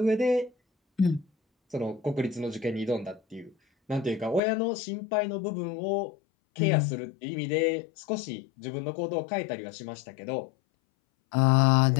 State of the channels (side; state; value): right; drops out; at 4.4 s